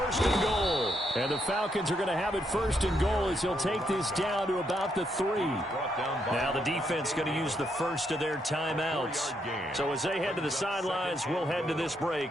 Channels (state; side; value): normal; both; correlation 0.77